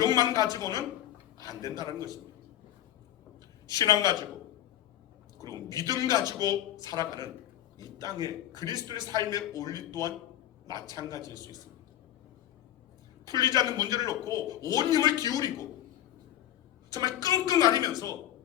가지고는 안 된다는 것입니다. 신앙 가지고 그리고 믿음 가지고 살아가는 이 땅의 그리스도의 삶의 원리 또한 마찬가지일 수 있습니다. 풀리지 않는 문제를 놓고 온 힘을 기울이고 정말 끙끙 앓으면서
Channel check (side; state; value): right; quieter; 12.4 dB